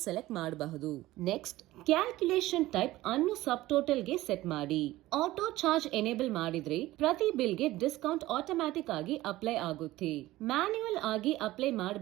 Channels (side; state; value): left; quieter; 16.9 dB